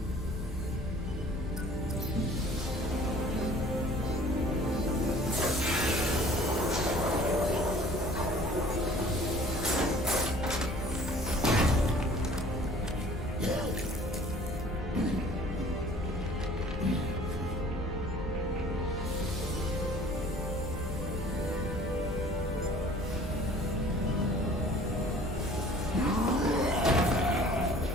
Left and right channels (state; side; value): normal; both; correlation 0.50